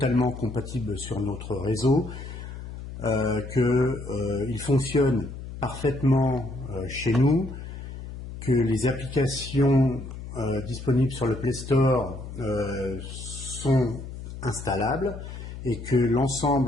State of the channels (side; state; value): left; noise; hum, 10 dB below the sound